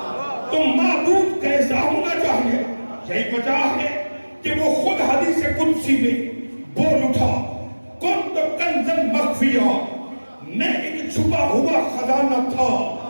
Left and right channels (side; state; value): both; inverted; correlation -1.00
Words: تو معبود کیسا ہونا چاہیے. یہی وجہ ہے کہ وہ خود حدیث قدسی میں بول اٹھا، کنت کنزا مخفیا، میں ایک چھپا ہوا خزانہ تھا،